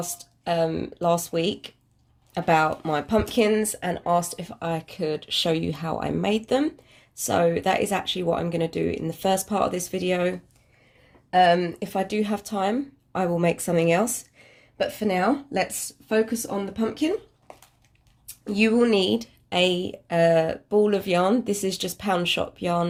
last week about my pumpkins and asked if I could show you how I made them. So that is actually what I'm going to do in the first part of this video. If I do have time, I will make something else. But for now, let's focus on the pumpkin. You will need a ball of yarn. This is just pound shop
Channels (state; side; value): identical; both; correlation 1.00